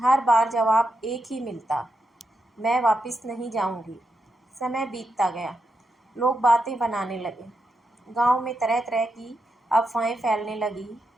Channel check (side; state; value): both; normal; correlation 0.85